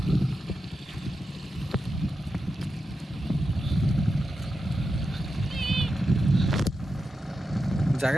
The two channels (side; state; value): both; normal; correlation 0.89